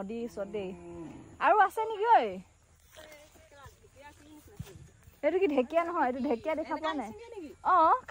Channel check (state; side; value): identical; both; correlation 1.00